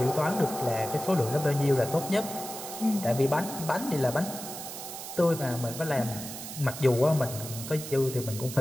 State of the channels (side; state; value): right; noise; hiss, 9 dB below the sound